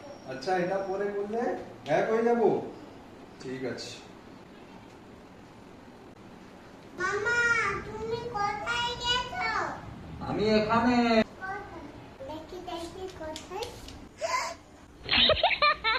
আচ্ছা এটা পরে করলে এক হয়ে যাবো। ঠিক আছে। মামা তুমি কোথায় গেছো? আমি এখানে। দেখি দেখি কোথায়?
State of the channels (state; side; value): identical; both; correlation 1.00